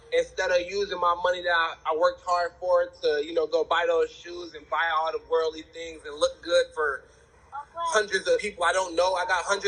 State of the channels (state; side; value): identical; both; correlation 1.00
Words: Instead of using my money that I worked hard for to, you know, go buy those shoes and buy all the worldly things and look good for hundreds of people I don't know. I got